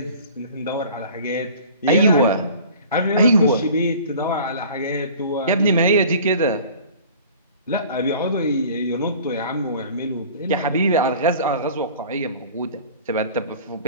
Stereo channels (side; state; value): both; inverted; correlation -0.45